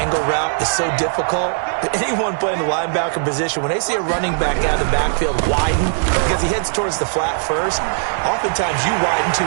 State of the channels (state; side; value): silent; left; 67 dB below the other